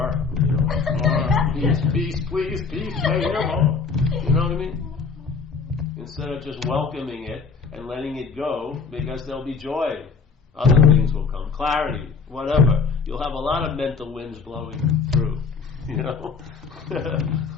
More. Peace, please, peace, right here, more. You know what I mean? Instead of just welcoming it and letting it go, because there'll be joy. Other things will come. Clarity, whatever. You'll have a lot of mental winds blowing through. You know?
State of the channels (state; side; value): quieter; right; 5.0 dB